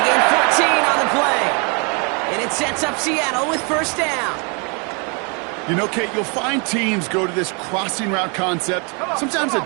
gain 14 on the play. And it sets up Seattle with 1st down. You know, Kate, you'll find teams go to this crossing route concept sometimes a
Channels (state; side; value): quieter; left; 34.3 dB